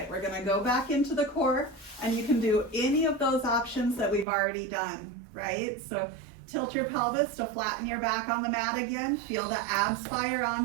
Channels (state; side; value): drops out; left; at 4.2 s